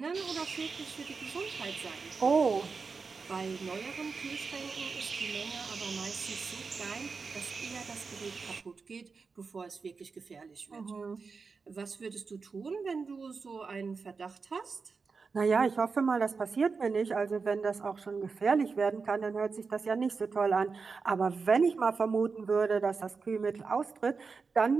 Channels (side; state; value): left; quieter; 4.8 dB